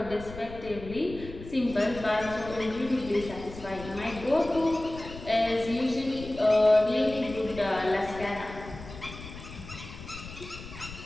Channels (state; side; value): noise; left; rumble, 14 dB below the sound